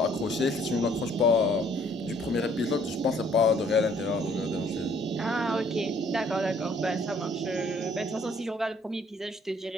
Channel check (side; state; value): both; normal; correlation 0.61